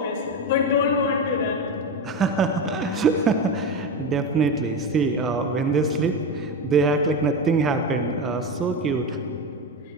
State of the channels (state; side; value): normal; both; correlation 0.17